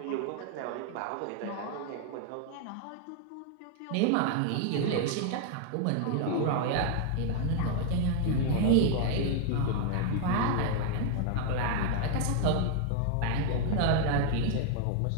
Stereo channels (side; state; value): both; different; correlation 0.00